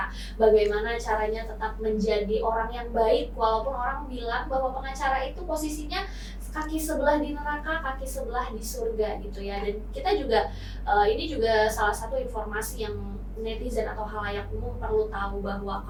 Bagaimana caranya tetap menjadi orang yang baik walaupun orang bilang bahwa pengacara itu posisinya kaki sebelah di neraka, kaki sebelah di surga gitu ya. Dan kita juga ini juga salah satu informasi yang netizen atau halayak umum perlu tahu, bahwa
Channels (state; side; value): identical; both; correlation 1.00